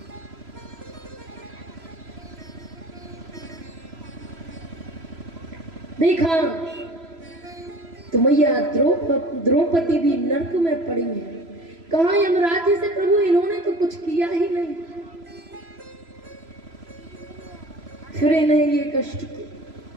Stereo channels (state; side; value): late; left; 3.0 ms